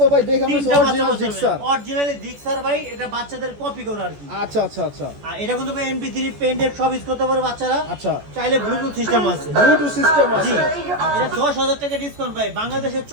ভাই দেখে আমি অরিজিনাল জিক্সার। অরিজিনালি জিক্সার ভাই, এটা বাচ্চাদের কপি করে আর কি। আচ্ছা, আচ্ছা, আচ্ছা, আর এটা কিন্তু ভাই MP3 পেন ড্রাইভ সব ইউজ করতে পারে বাচ্চারা। আচ্ছা। চাইলে ব্লুটুথ সিস্টেম আছে। ব্লুটুথ সিস্টেম জি, আছে। এটা 10,000 টাকা ডিসকাউন্ট ভাই। বাংলাদেশের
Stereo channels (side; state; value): left; late; 14 ms